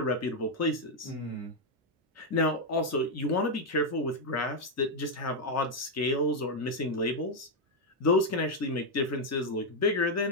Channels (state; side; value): normal; both; correlation 0.01